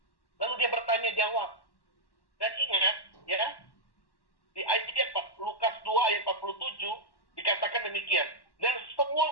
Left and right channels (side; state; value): right; late; 1.1 ms